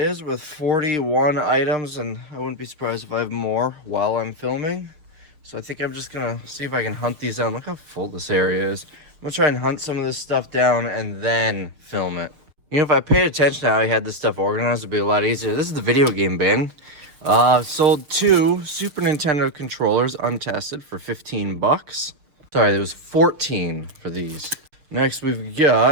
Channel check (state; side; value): late; left; 6.5 ms